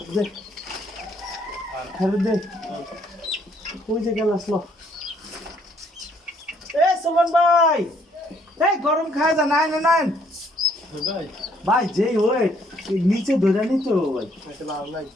দে খেলে দে ওই যে গ্যালাস লো এ সুমন ভাই এই গরম খায় যা নাই নাই ভাই ভাই যেই ওই নিচে ধরে নিতে ভাই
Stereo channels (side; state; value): both; normal; correlation 0.66